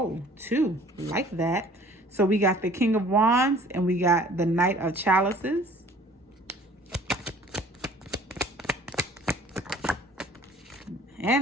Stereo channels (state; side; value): normal; both; correlation 0.51